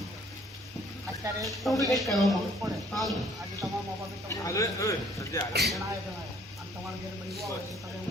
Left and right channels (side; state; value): both; normal; correlation 0.60